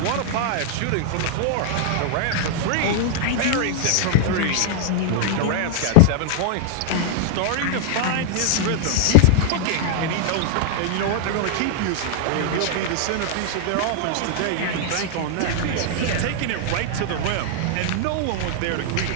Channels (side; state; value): both; different; correlation -0.01